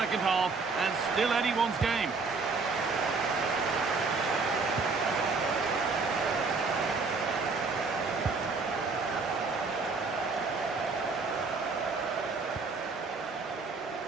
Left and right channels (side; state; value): left; quieter; 4.3 dB